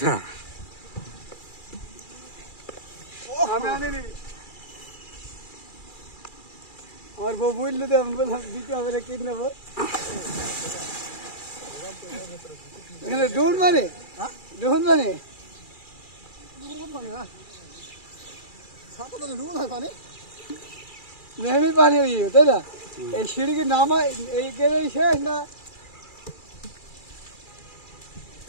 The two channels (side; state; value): right; late; 2.3 ms